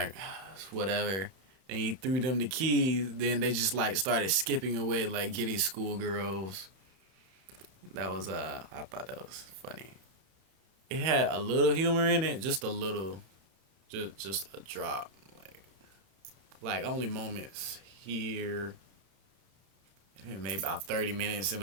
"Whatever." And he threw them the keys. Then they just like started skipping away like giddy schoolgirls. That was I thought that was funny. It had a little humor in it, just a little, just a drop, like only moments here maybe about 30 minutes in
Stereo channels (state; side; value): late; left; 31 ms